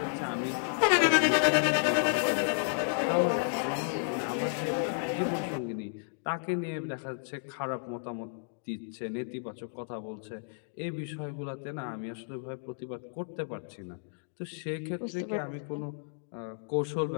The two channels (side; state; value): right; silent; digital silence